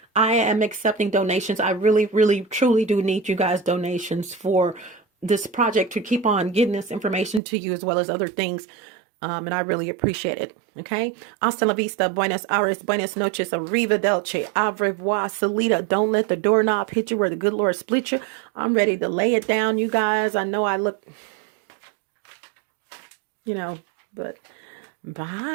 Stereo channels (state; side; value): drops out; left; at 7.4 s